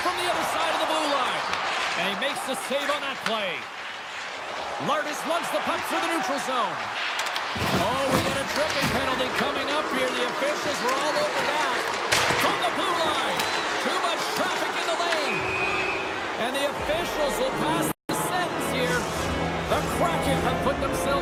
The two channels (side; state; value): both; identical; correlation 1.00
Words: from the other side of the blue line. And he makes the save on that play. Lardis lugs the puck through the neutral zone. Oh, we got a tripping penalty coming up here. The officials were all over that. From the blue line. Too much traffic in the lane. And the officials will pass the sentence here. The Kraken have put